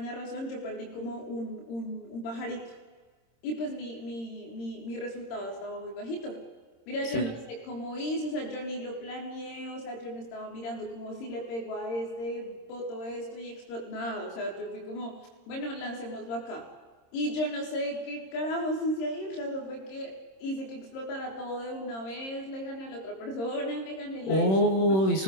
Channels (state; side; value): late; right; 26 ms